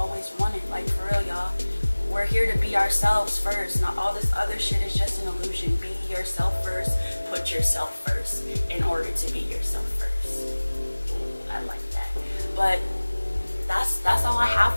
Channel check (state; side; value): inverted; both; correlation -1.00